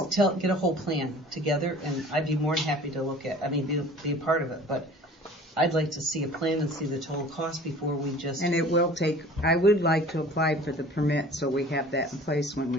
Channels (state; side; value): normal; both; correlation 0.46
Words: get a whole plan together, and I'd be more than happy to look at, be a part of it, but I'd like to see a plan and see the total cost before we just. and it will take, I would like to apply for the permit so we have that in place when